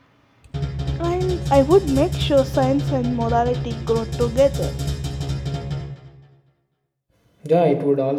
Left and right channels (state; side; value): identical; both; correlation 1.00